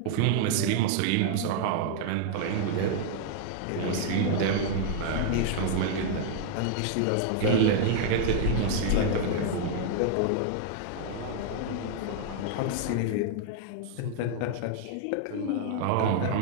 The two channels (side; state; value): both; different; correlation 0.00